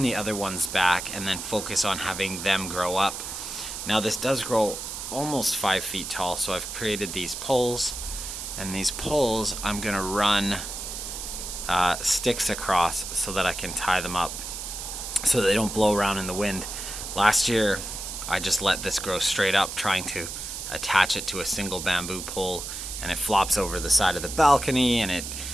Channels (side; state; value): right; noise; hiss, 7 dB below the sound